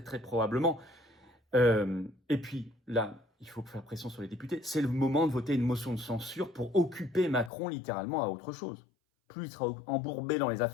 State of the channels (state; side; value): drops out; right; at 7.5 s